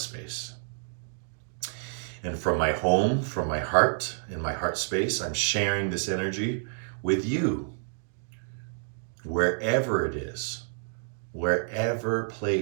And from my home, from my heart, in my heart space, I'm sharing this energy with you, wherever it is, wherever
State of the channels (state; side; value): silent; left; digital silence